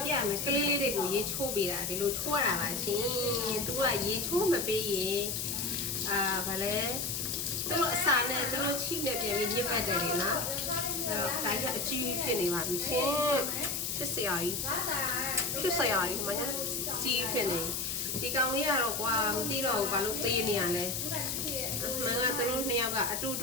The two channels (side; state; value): left; noise; hiss, 2 dB below the sound